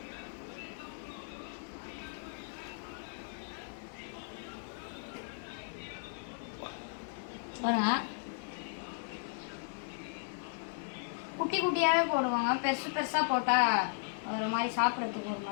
பாருங்கள், குட்டி குட்டியாகவே போடுவாங்க. பெருசாக போட்டால் ஒரு மாதிரி சாப்பிட்றதுக்கு ஒரு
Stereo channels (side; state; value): right; silent; digital silence